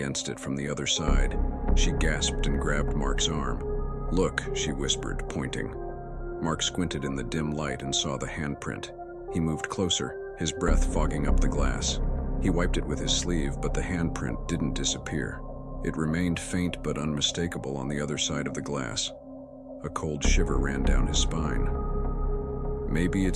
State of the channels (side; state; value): both; identical; correlation 1.00